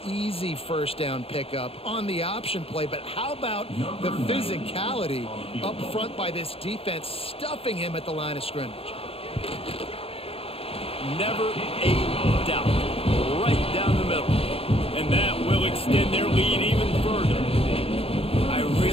easy first down pickup on the option play. But how about the physicality up front by this defense stuffing him at the line of scrimmage? Never a doubt. Right down the middle. And that will extend their lead even further. I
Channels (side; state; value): right; late; 0.28 ms